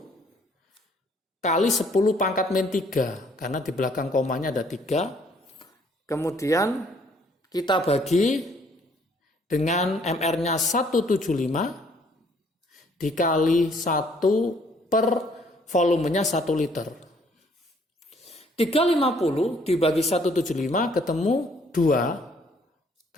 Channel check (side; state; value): both; normal; correlation 0.63